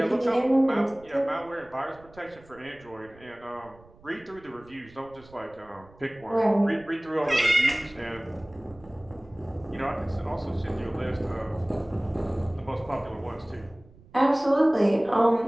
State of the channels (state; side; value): noise; right; rumble, 24 dB below the sound